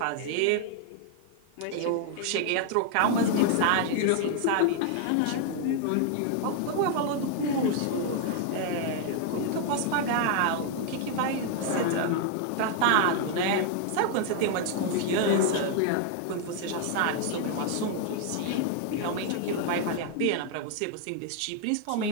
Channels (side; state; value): both; different; correlation 0.00